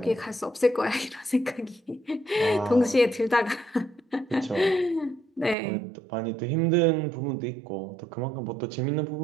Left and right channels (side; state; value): left; drops out; at 5.6 s